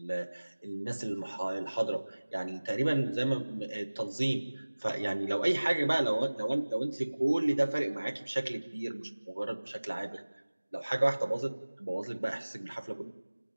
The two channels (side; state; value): both; inverted; correlation -1.00